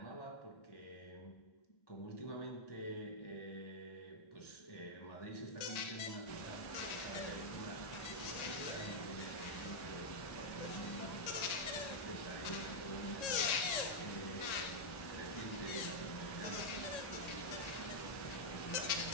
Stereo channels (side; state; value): right; late; 1.8 ms